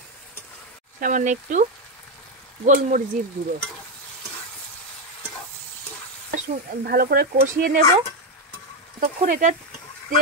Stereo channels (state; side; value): normal; both; correlation 0.07